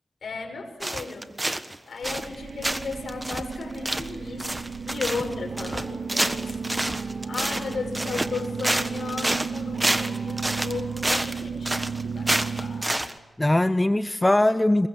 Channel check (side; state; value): both; normal; correlation 0.95